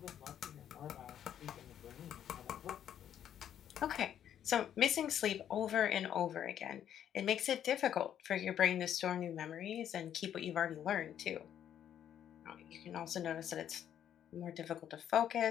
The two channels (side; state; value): right; quieter; 10.0 dB